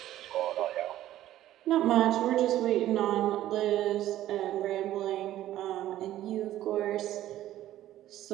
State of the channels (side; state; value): left; quieter; 13.5 dB